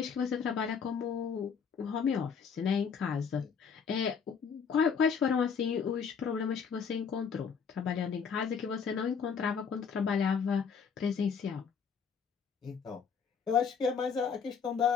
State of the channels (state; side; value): quieter; right; 6.4 dB